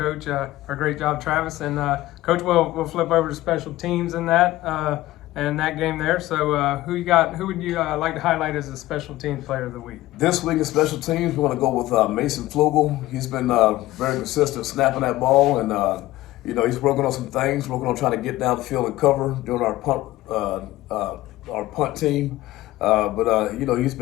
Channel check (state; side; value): quieter; right; 16.8 dB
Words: Or great job, Travis. And Coach, we'll flip over to special teams in that game there. So who you got? Who would you like to highlight as a special teams player of the week? This week in special teams, we're going to go with Mason Flugel. He's been very consistent snapping that ball, and he's working on some things. Working on trying to get down the field and cover during our punt team. But he's